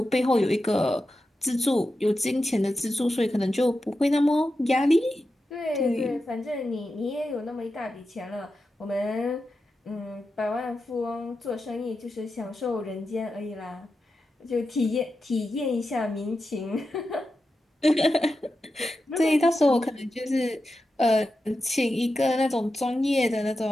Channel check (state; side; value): normal; both; correlation 0.90